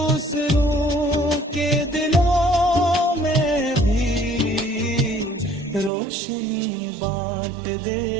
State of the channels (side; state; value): left; drops out; at 5.9 s